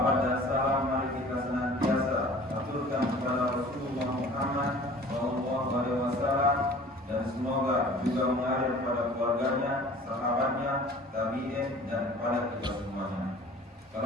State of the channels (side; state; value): both; normal; correlation 0.46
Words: dan salam mari kita senantiasa aturkan kepada Rasulullah Muhammad SAW, dan semoga juga mengalir kepada keluarganya, sahabatnya, tabi'in, dan kepada kita semuanya.